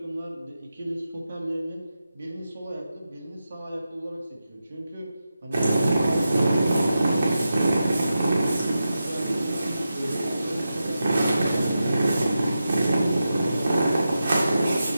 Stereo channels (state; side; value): inverted; both; correlation -0.90